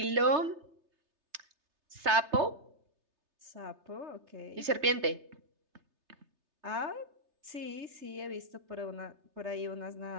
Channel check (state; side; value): late; left; 3.3 ms